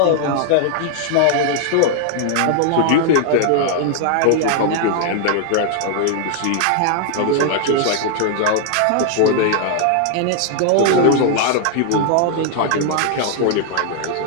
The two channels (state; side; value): different; both; correlation 0.00